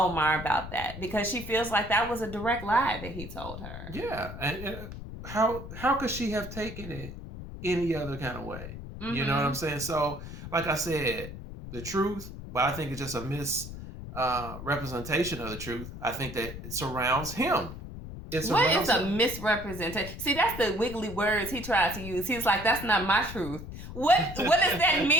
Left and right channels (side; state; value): left; noise; rumble, 10 dB below the sound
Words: about that because she feels like that was a direct lie that he told her. Yeah. And how could she have taken it any other kind of way? You know what I'm saying? So, like I said, the truth, but I think it's just a misrepresentation of the truth. I think that it surrounds him. What is a misrepresentation? See, that's the wiggly words he tried to use. He's like, that's not my truth. What does that